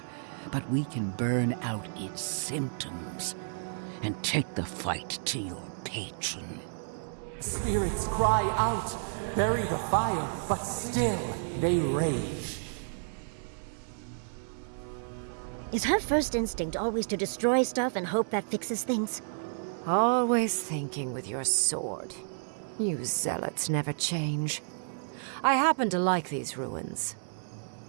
but we can burn out its symptoms and take the fight to your patron. Spirits cry out, bury the fire, but still they rage. Is her first instinct always to destroy stuff and hope that fixes things? Always thinking with your sword. You zealots never change. I happen to like these ruins.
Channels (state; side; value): silent; left; digital silence